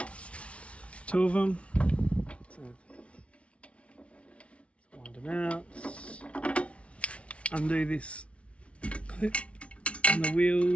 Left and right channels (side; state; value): right; late; 0.062 ms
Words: 2 of them. So wind them out. Undo this clip and the